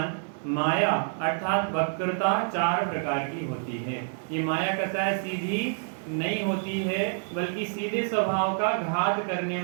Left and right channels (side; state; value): left; silent; digital silence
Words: माया अर्थात वक्रता 4 प्रकार की होती है। ये माया कसाय सीधी नहीं होती है, बल्कि सीधे स्वभाव का घात करने